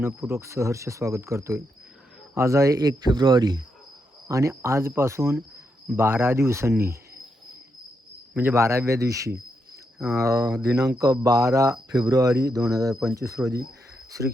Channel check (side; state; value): both; normal; correlation 0.82